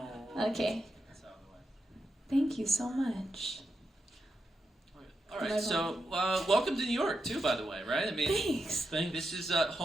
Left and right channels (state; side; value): normal; both; correlation 0.87